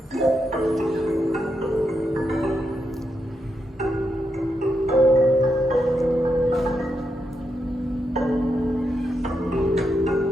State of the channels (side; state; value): both; normal; correlation 0.83